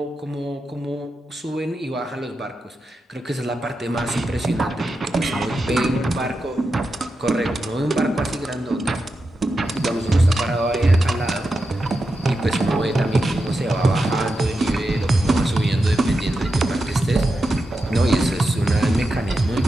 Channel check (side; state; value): both; normal; correlation 0.89